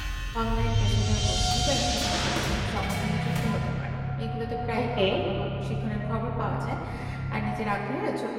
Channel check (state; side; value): identical; both; correlation 1.00